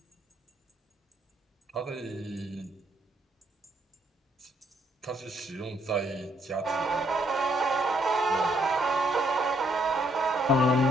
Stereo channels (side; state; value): both; normal; correlation 0.71